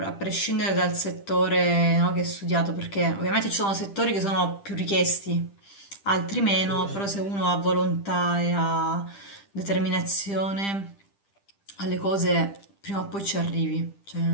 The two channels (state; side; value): late; right; 10 ms